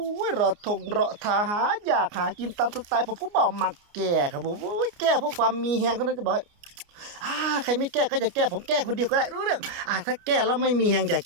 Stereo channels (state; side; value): late; left; 29 ms